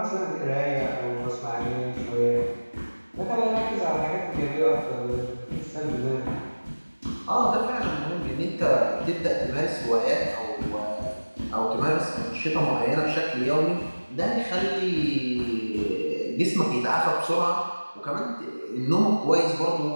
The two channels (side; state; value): both; inverted; correlation -1.00